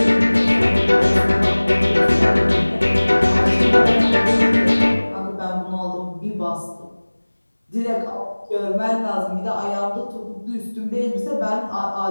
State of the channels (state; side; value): inverted; both; correlation -1.00